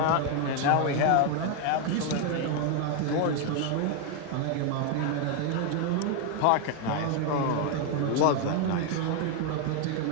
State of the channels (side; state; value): both; different; correlation 0.01